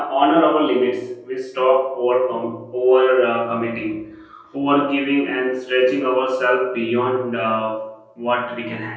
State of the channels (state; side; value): identical; both; correlation 1.00